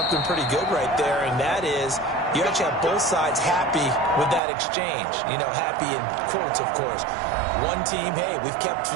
pretty good right there, and that is you actually have both sides happy with that exchange. You know, happy in quotes, of course. One team, hey, we've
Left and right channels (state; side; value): drops out; left; at 4.4 s